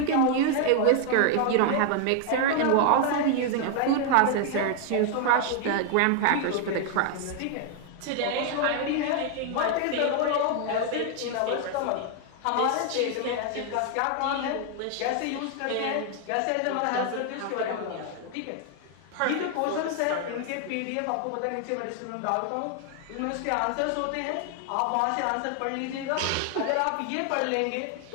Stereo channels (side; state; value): both; different; correlation 0.00